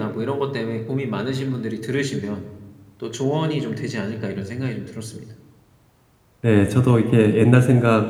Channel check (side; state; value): both; identical; correlation 1.00